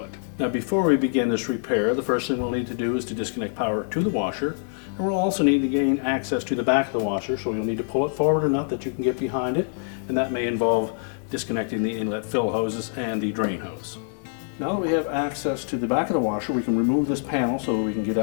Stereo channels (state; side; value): silent; right; digital silence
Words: it. Now before we begin this repair, the first thing we'll need to do is to disconnect power to the washer, and we'll also need to gain access to the back of the washer, so you'll need to pull it forward enough that you can get behind it, and that may involve disconnecting the inlet fill hoses and the drain hose. Now that we have access to the back of the washer, we can remove this panel so we can get